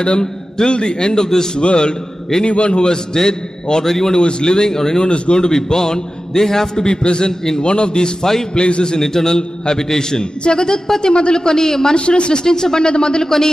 till the end of this world, anyone who was dead or anyone who is living or anyone who is going to be born, they have to be present in one of these 5 places in eternal habitation. జగదుత్పత్తి మొదలుకొని మనుషులు సృష్టించబడినది మొదలుకొని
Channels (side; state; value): both; normal; correlation 0.94